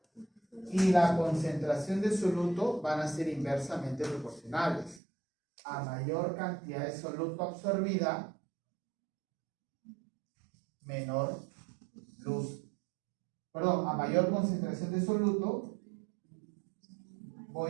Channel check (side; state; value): left; drops out; at 5.0 s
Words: y la concentración de soluto van a ser inversamente proporcionales. A mayor cantidad de soluto absorbida, menor luz. Perdón, a mayor concentración de soluto,